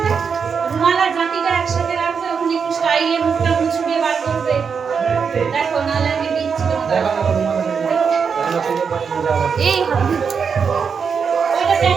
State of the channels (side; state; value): left; quieter; 6.2 dB